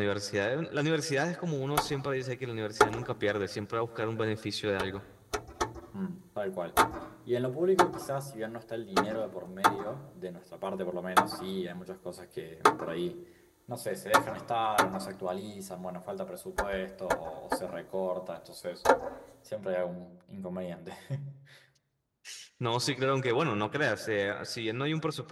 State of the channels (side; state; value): both; identical; correlation 1.00